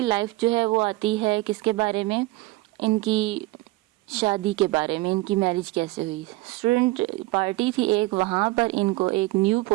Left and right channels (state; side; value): quieter; left; 20.3 dB